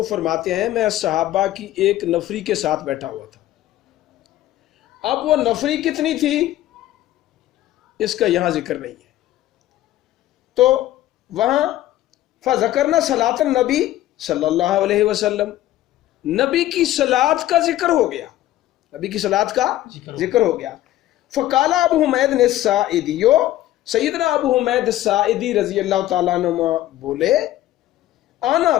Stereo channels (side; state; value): right; quieter; 14.3 dB